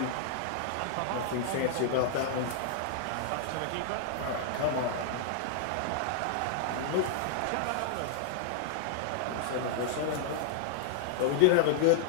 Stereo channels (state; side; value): different; both; correlation -0.01